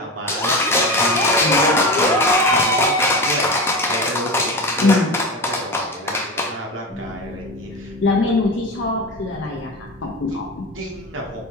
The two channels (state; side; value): normal; both; correlation 0.25